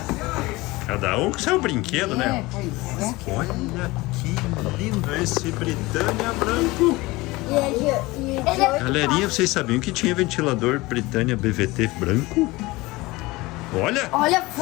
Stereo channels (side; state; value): right; quieter; 21.2 dB